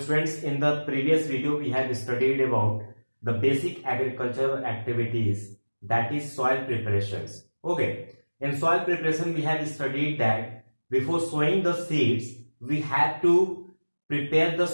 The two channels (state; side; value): inverted; both; correlation -1.00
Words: in the previous video we have studied about the basic agricultural activities, that is soil preparations. Okay, in soil preparation we have studied that before sowing the seeds we have to prepare the